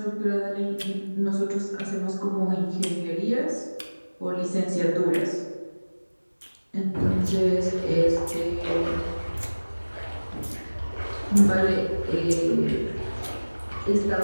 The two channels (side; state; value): both; inverted; correlation -1.00